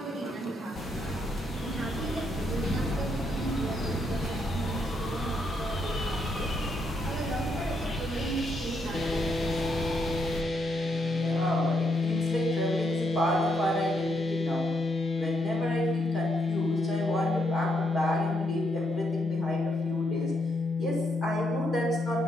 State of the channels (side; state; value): both; normal; correlation 0.77